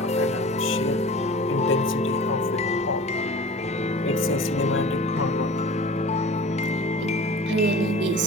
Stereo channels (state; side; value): normal; both; correlation 0.40